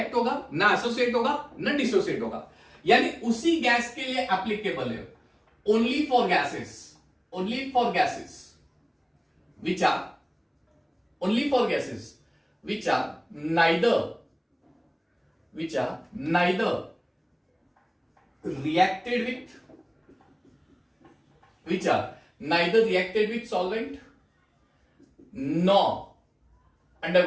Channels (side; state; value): both; identical; correlation 1.00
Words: होगा, ना एसोसिएट होगा, ना डिसोसिएट होगा। यानी उसी गैस के लिए एप्लीकेबल है only for gases which are neither reacted with solvent nor